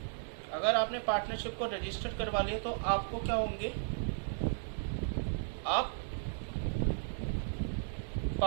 अगर आपने पार्टनरशिप को रजिस्टर करवा लिया तो आपको क्या होंगे? आप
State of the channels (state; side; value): silent; left; digital silence